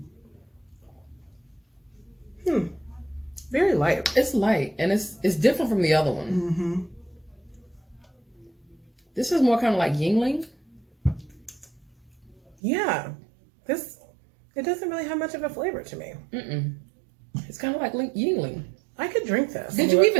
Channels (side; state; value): left; drops out; at 12.6 s